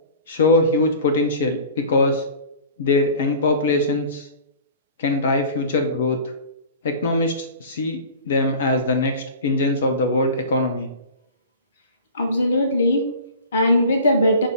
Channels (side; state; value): both; inverted; correlation -0.40